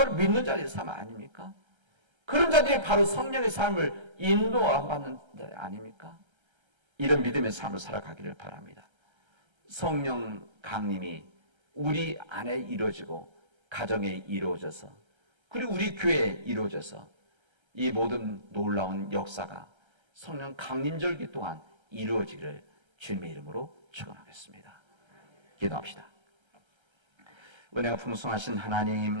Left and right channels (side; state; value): left; late; 1.3 ms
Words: 믿는 자들의 삶 아닙니까? 그런 자들이 바로 성령의 삶을 인도받는 자 아닙니까? 이런 믿음의 삶을 살아가기를 바랍니다. 성령 강림이 우리 안에 이루어지고 가정에 이루어져서, 그리고 우리 교회에 이루어져서 이 모든 놀라운 역사가 성령 강림절기 동안 이루어지기를 주님의 이름으로 축원하겠습니다. 기도합시다. 은혜가 풍성하신